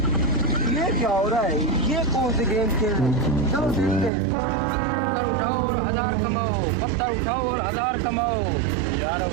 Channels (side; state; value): left; drops out; at 4.1 s